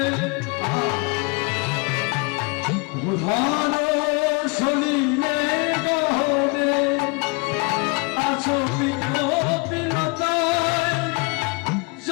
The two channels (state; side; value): quieter; right; 30.9 dB